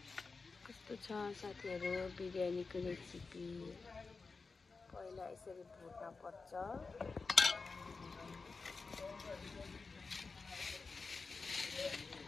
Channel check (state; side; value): quieter; right; 4.3 dB